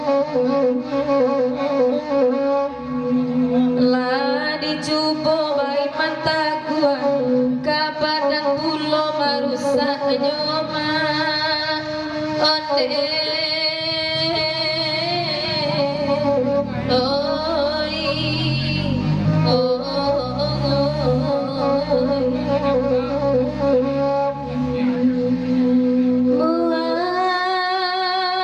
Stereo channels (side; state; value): both; identical; correlation 1.00